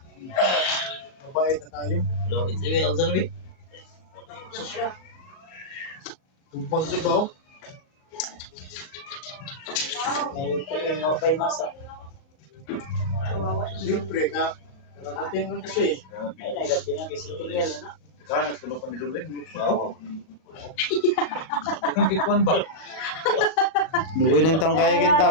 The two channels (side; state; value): right; late; 38 ms